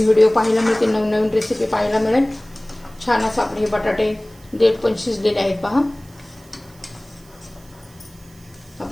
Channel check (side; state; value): right; noise; hiss, 27 dB below the sound